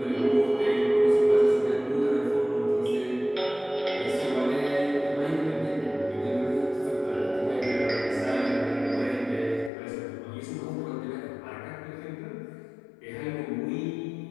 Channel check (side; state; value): right; drops out; at 9.7 s